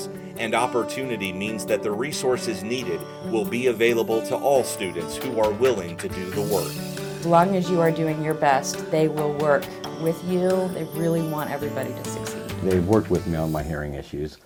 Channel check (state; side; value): identical; both; correlation 1.00